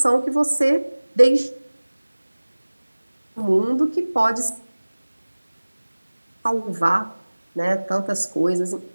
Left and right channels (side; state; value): both; inverted; correlation -1.00